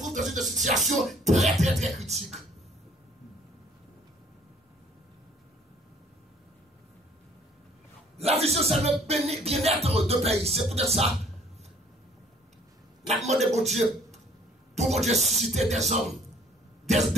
dans une situation très très très critique. La vision, c'est le bien-être de pays. C'est pour ça. La demande de mon Dieu, pour mon Dieu susciter des hommes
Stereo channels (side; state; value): both; normal; correlation 0.58